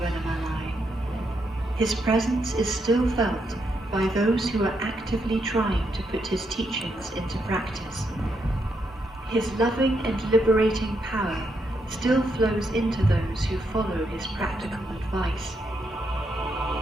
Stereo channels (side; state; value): both; normal; correlation 0.80